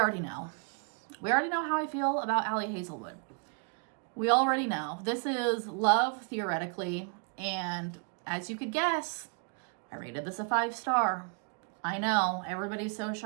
know. We already know how I feel about Ali Hazelwood. We already know. This is Love, Theoretically, and as you could guess, I rated this a 5-star. I know, everybody's so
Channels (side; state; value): left; quieter; 37.9 dB